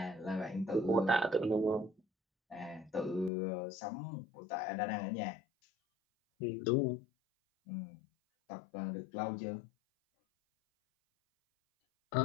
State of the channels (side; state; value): right; drops out; at 3.3 s